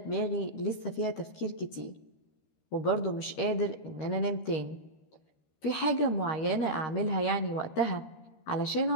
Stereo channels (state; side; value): late; right; 13 ms